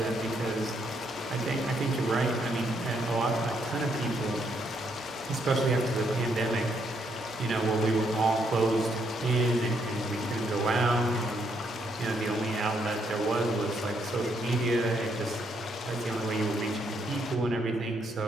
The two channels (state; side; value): normal; both; correlation 0.74